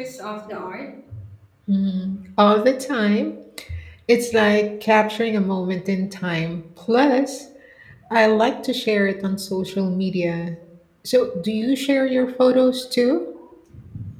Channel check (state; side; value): identical; both; correlation 1.00